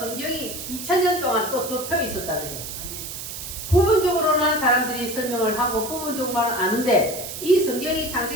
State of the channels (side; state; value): right; noise; hiss, 8 dB below the sound